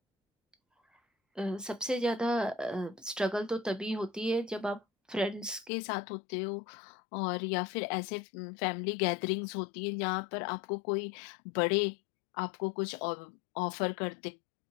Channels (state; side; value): drops out; right; at 5.7 s